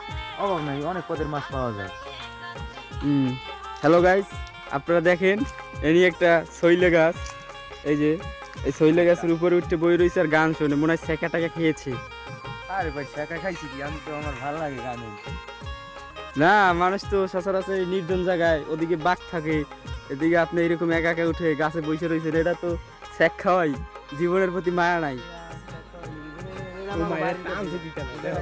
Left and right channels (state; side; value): identical; both; correlation 1.00